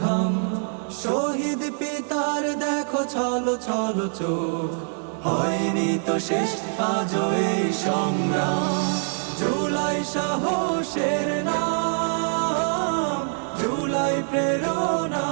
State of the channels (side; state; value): left; silent; 62 dB below the other